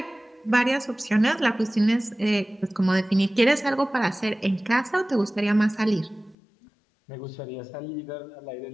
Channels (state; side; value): drops out; right; at 6.4 s